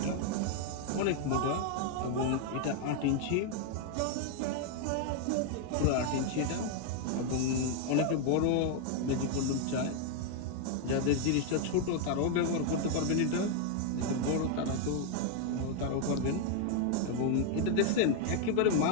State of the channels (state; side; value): different; both; correlation 0.00